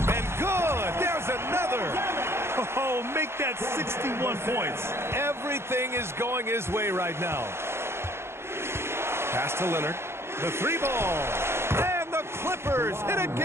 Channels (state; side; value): late; left; 0.12 ms